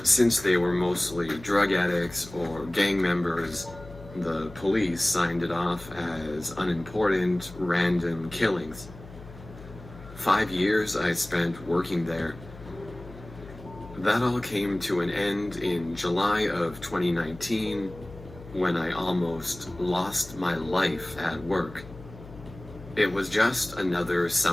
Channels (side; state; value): left; noise; hum, 17 dB below the sound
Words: since they were mostly drug addicts or gang members, the police signed it off as unimportant, random killings. 5 years I spent working there. That all came to an end in July of 2019, when I almost lost my life at work. It was just another